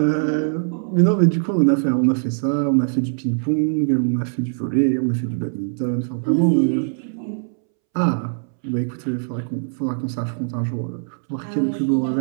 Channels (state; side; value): silent; left; 65 dB below the other